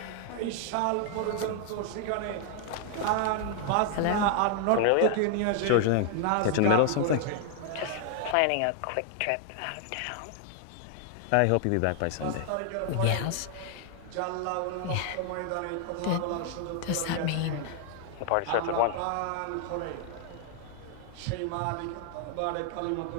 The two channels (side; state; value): both; different; correlation 0.00